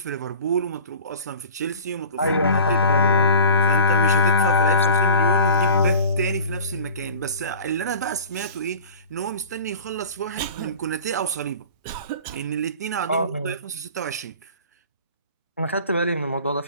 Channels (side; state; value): both; inverted; correlation -0.39